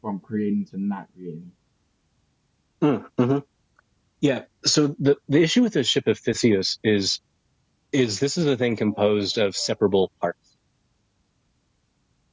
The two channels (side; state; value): both; identical; correlation 1.00